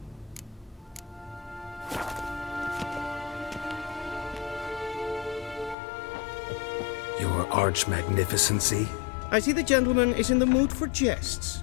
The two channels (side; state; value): right; drops out; at 5.8 s